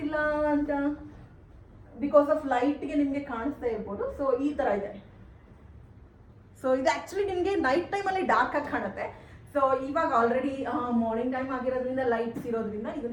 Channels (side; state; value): both; identical; correlation 1.00